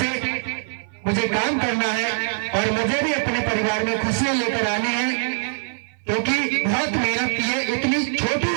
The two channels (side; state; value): left; silent; 57 dB below the other